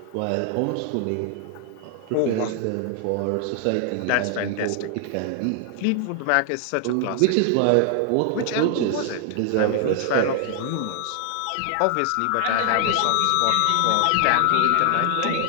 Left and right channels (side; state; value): both; different; correlation 0.00